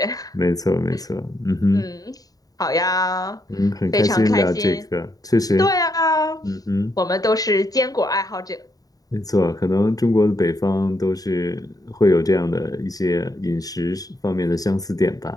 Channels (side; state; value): right; late; 0.18 ms